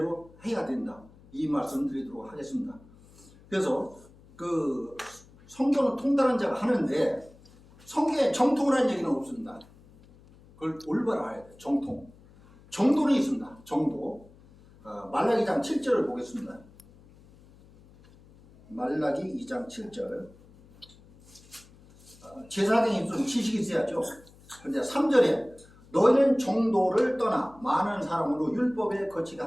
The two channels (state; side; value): noise; left; hum, 25 dB below the sound